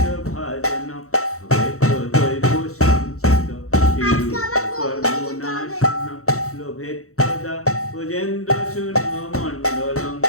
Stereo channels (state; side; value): late; right; 0.64 ms